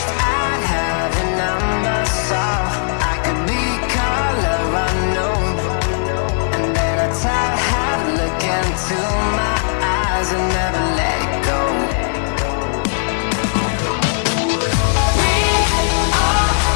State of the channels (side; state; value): right; silent; digital silence